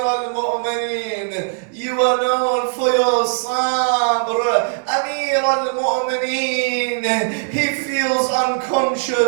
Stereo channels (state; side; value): silent; left; digital silence